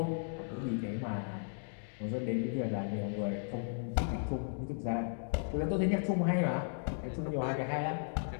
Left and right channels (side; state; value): right; silent; digital silence